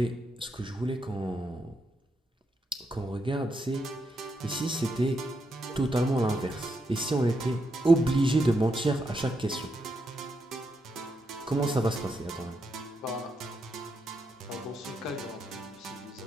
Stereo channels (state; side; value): normal; both; correlation 0.82